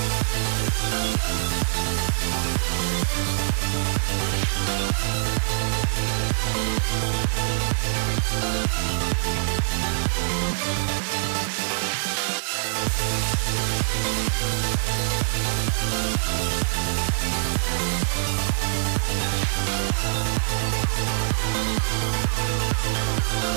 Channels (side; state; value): left; silent; digital silence